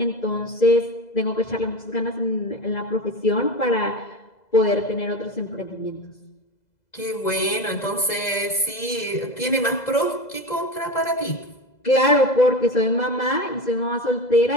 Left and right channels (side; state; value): right; late; 2.0 ms